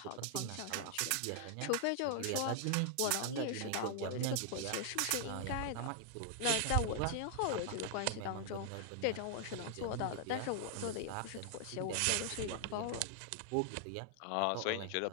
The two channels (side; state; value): both; different; correlation 0.00